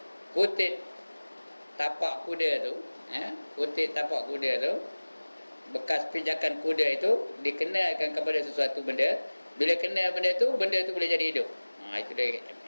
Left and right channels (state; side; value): inverted; both; correlation -1.00